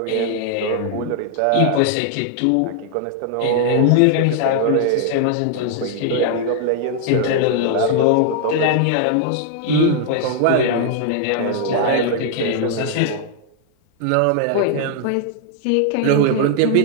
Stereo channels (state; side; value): different; both; correlation 0.00